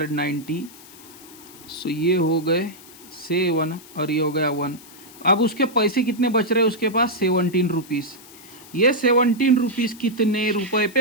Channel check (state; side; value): noise; left; hiss, 20 dB below the sound